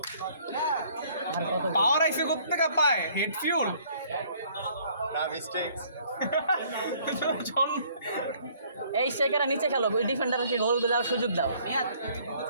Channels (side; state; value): both; inverted; correlation -0.60